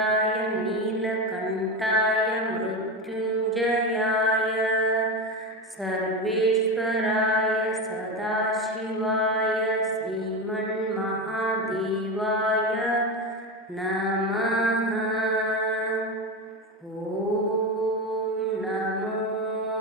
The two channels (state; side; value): normal; both; correlation 0.18